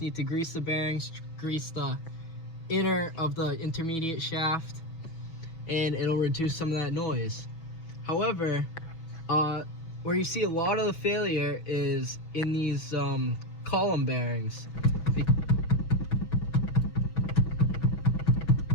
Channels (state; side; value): late; right; 6.1 ms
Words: to grease the bearings, grease the inner of the intermediate shaft, and it'll reduce some of that noise. However, where you see a lot of the failure is in these column bearings.